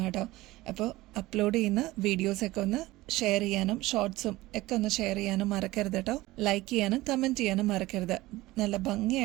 കേട്ടോ. അപ്പോൾ അപ്ലോഡ് ചെയ്യുന്ന വീഡിയോസൊക്കെ ഒന്ന് ഷെയർ ചെയ്യാനും ഷോർട്സും ഒക്കെ ഒന്ന് ഷെയർ ചെയ്യാനും മറക്കരുത് കേട്ടോ. ലൈക്ക് ചെയ്യാനും കമന്റ് ചെയ്യാനും മറക്കരുത്. നല്ല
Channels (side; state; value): left; quieter; 18.5 dB